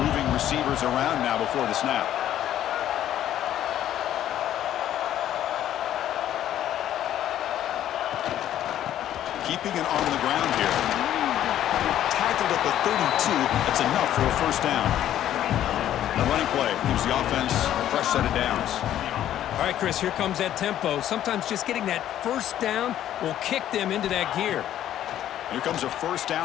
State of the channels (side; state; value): right; quieter; 11.7 dB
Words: receivers around now before the snap. Keeping it on the ground here. Tackled at the 32. That's enough for a first down. The running play gives the offense a fresh set of downs. All right, Chris, here comes that tempo. Sometimes just getting that first down will kick them into that gear. Here comes a first